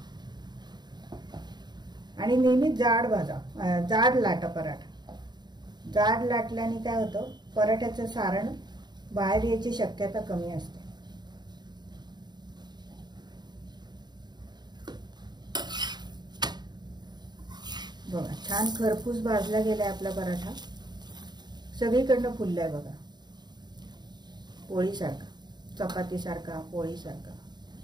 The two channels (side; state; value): left; late; 0.21 ms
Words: आणि नेहमी जाड भाजा, जाड लाटा पराठा. जाड लाटल्याने काय होतं, पराठ्याचं सारण बाहेर यायची शक्यता कमी असते. बघा छान खरपूस भाजला गेलाय आपला पराठा. सगळीकडनं फुललाय बघा, पोळीसारखा, चपातीसारखा, पोळीसारखा.